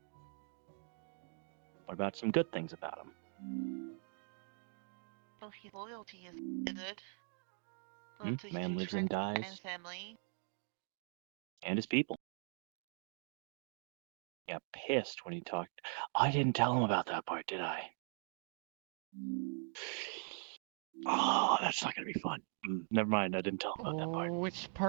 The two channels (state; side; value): silent; left; 50 dB below the other